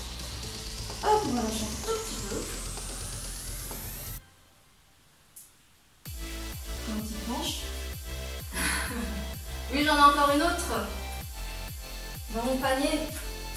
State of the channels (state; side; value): identical; both; correlation 1.00